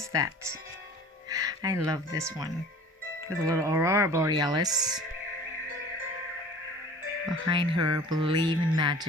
that? I love this one with a little aurora borealis behind her. Believe in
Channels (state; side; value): normal; both; correlation 0.44